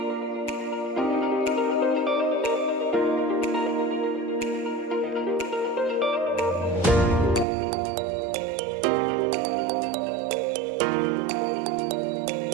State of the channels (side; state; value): left; drops out; at 7.5 s